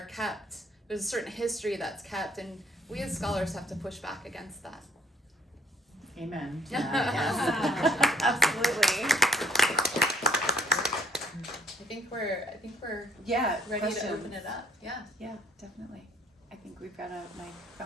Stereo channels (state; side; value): normal; both; correlation 0.62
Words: kept, there's a certain history that's kept, and we as scholars have to push back against that. Amen. Yes. Absolutely. I think we're ready questions. to open it up. Yeah, definitely. I think we've got a mic